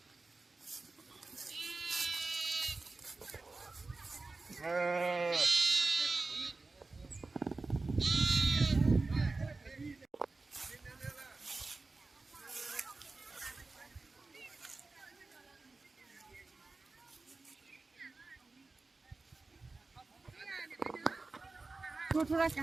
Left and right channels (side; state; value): left; quieter; 3.6 dB